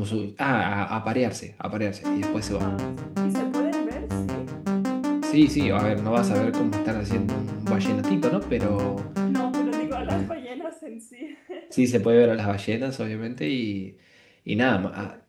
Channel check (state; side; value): identical; both; correlation 1.00